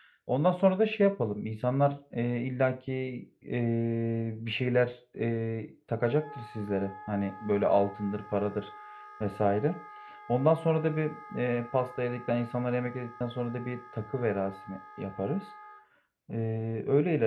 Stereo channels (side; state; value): both; identical; correlation 1.00